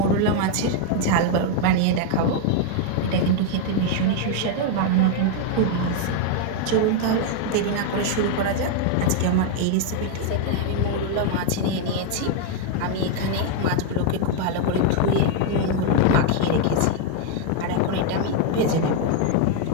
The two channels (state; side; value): different; both; correlation 0.00